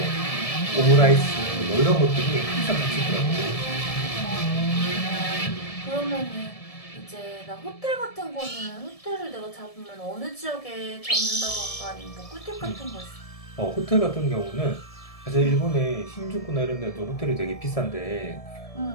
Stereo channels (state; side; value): late; right; 1.7 ms